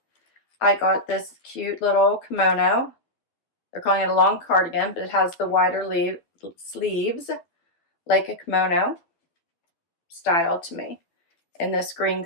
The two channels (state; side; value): late; right; 12 ms